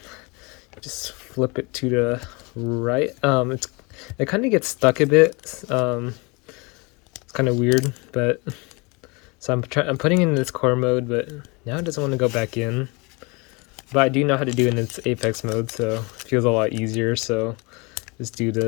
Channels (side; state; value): right; quieter; 28.3 dB